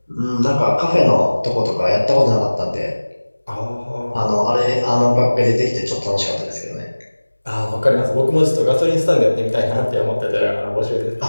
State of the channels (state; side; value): inverted; both; correlation -1.00